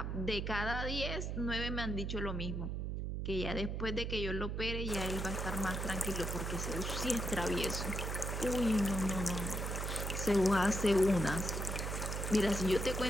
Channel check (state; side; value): noise; right; hum, 2 dB below the sound